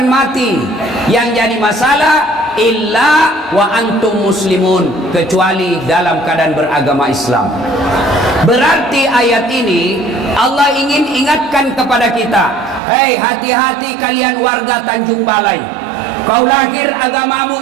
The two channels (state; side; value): drops out; left; at 12.8 s